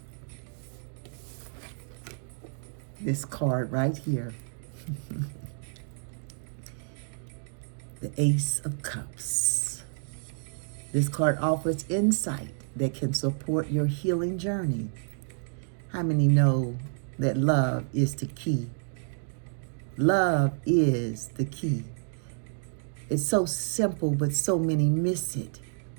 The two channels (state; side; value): silent; left; digital silence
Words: This card right here. The Ace of Cups. This card offers insight that can support your healing journey. How many know that love is the key? Love is the key. It's so simple, but so many miss it.